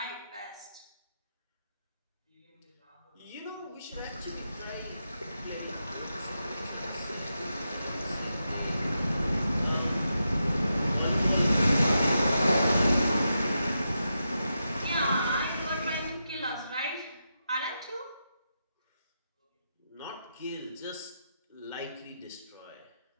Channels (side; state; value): both; inverted; correlation -0.87